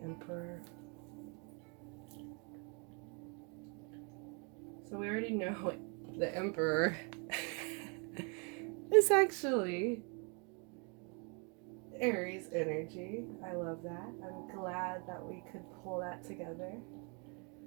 So we already know the Emperor is actually Aries energy. I love that. I'm glad that we could pull that together.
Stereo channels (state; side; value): quieter; left; 35.5 dB